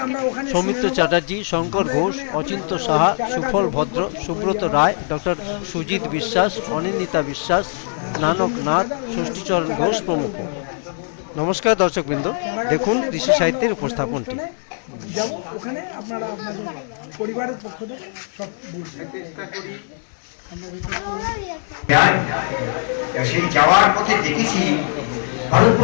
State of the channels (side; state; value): right; silent; 65 dB below the other